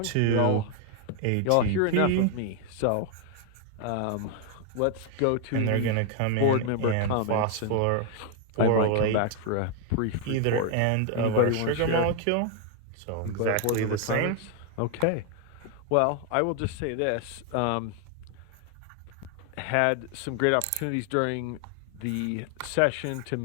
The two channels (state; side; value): different; both; correlation 0.00